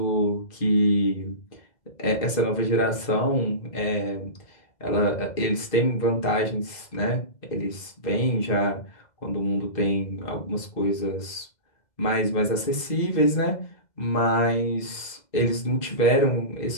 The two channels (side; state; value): right; late; 2.0 ms